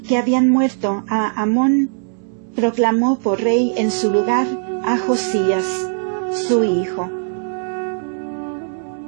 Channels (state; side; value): silent; left; 66 dB below the other